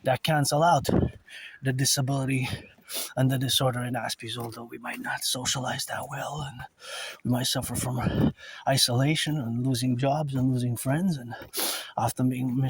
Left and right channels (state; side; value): identical; both; correlation 1.00